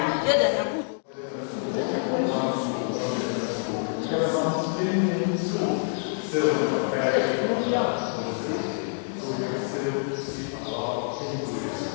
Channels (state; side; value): silent; right; digital silence